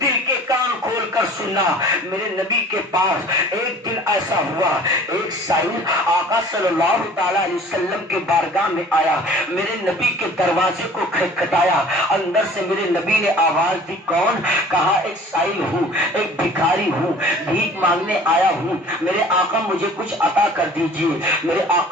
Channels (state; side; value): normal; both; correlation 0.48